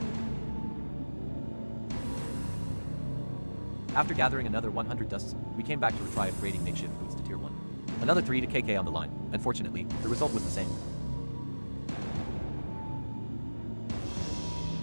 After gathering another 100 dusts, we came back to try upgrading makeshift boots to Tier 1. Another 3kk on the line. Unfortunately, the result was the same.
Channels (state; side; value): inverted; both; correlation -1.00